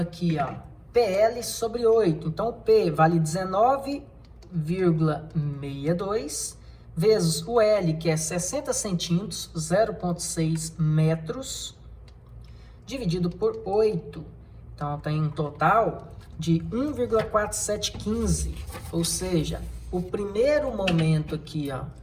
ó, PL sobre 8. Então o P vale 19,62 vezes o L, que é 60 centímetros, 0,6 metros, dividido por 8. Então tem um total de 1,4715, ou seja, o primeiro momento aqui, ó,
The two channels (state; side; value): identical; both; correlation 1.00